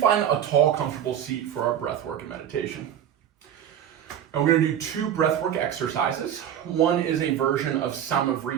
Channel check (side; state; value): left; quieter; 9.8 dB